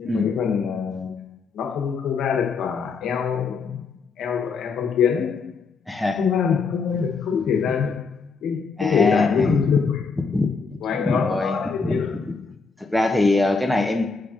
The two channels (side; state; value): right; quieter; 4.8 dB